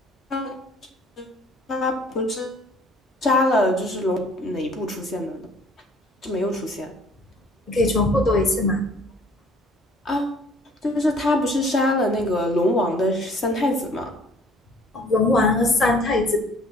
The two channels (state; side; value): normal; both; correlation 0.55